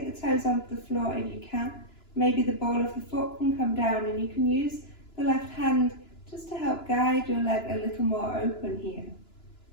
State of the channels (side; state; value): right; late; 2.9 ms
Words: the toes off the floor if you can. Maybe the ball of the foot can come down and you can use the left hand just to help guide your leg a little more open here.